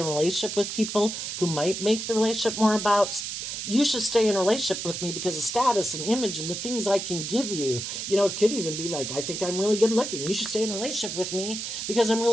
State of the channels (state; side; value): noise; right; hiss, 5 dB below the sound